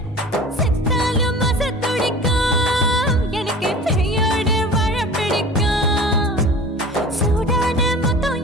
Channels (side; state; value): both; normal; correlation 0.40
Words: செத்தாலும் மச துடிக்கும் எனக்கு பெரியோடு வாழ பிடிக்கும் சூடான மொத்தம்